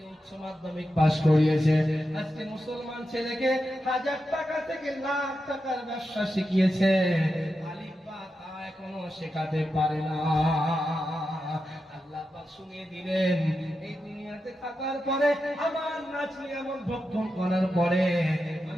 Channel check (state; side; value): normal; both; correlation 0.89